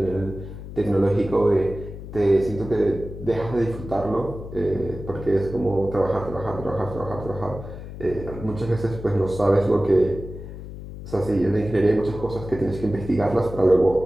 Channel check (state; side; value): noise; left; hum, 11 dB below the sound